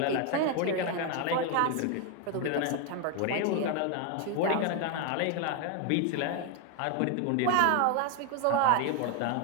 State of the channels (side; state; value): both; different; correlation 0.01